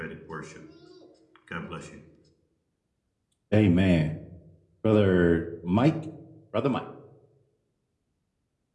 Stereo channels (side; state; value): both; identical; correlation 1.00